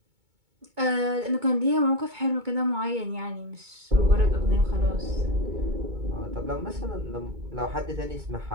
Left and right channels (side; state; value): left; late; 2.2 ms